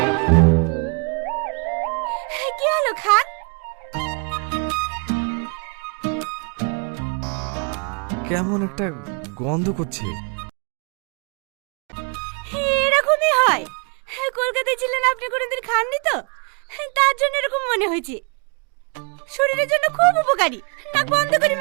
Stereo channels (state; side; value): quieter; left; 37.1 dB